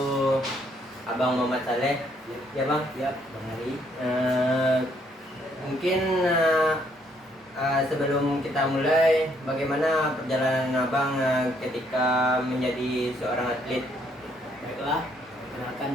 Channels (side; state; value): both; normal; correlation 0.69